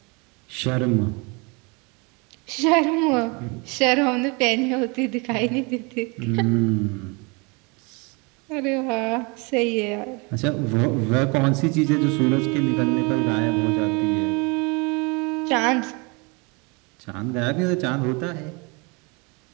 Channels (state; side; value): quieter; left; 29.9 dB